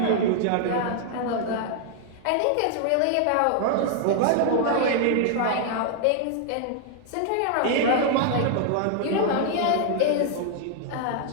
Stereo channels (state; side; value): different; both; correlation -0.01